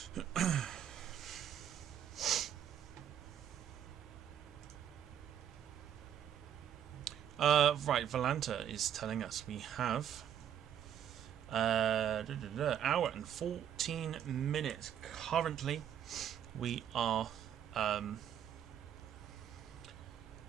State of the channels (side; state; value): left; quieter; 9.8 dB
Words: Right, Valanta is telling us we have hour and 14 minutes. Currently, we are